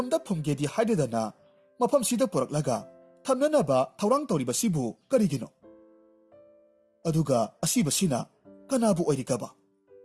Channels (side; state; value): both; identical; correlation 1.00